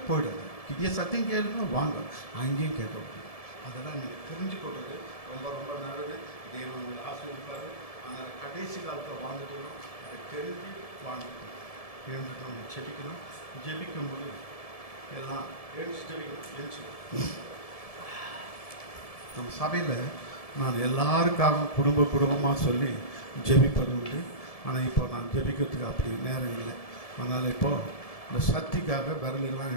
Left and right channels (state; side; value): late; right; 1.7 ms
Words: போயிடாது. இங்கே சத்தியம் கேளுங்க, வாங்க, அங்கேயும் கேட்க முடியும். அதெல்லாம் நீங்கள் தெரிஞ்சுக்கொள்வது ரொம்ப ரொம்ப நல்லது. தேவன் உங்களை ஆசீர்வதிப்பார். அதனால் கடைசி காலத்தில் வாழ்ந்துட்டு வரோம், அதை தெரிஞ்சு வாழ்ந்துக்கணும். எழுந்துட்டு நம்ம ஜெபிக்கணும். ஜெபிக்கும்போது எல்லாம் எழுந்து ஜெபிக்கணும். எழுந்து நம்ம சபையில் நான் எல்லாருக்காகவும் குடும்பமாக சொல்லி ஜெபிப்பது உண்டு. ஆனால் இப்போ நான் ஜெபிக்கிறதுக்கு அப்படி நேரம் இல்லை. அதனால் இப்போது இந்த சக்திக்காக விரலெல்லாம்